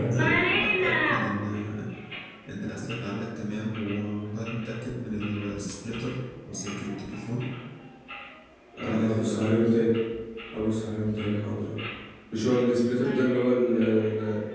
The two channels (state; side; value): identical; both; correlation 1.00